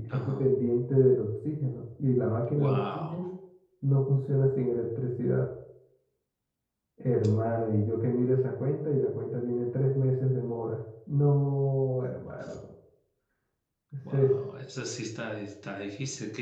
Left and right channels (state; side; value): identical; both; correlation 1.00